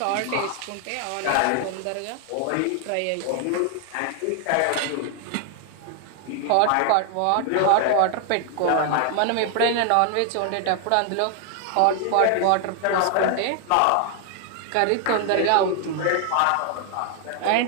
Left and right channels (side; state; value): both; different; correlation 0.00